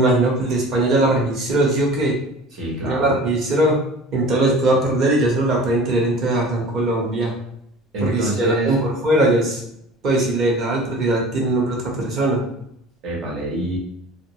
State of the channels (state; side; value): normal; both; correlation 0.41